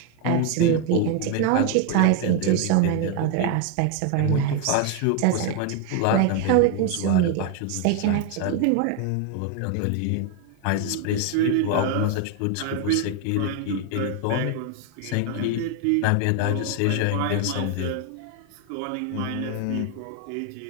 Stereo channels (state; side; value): different; both; correlation 0.01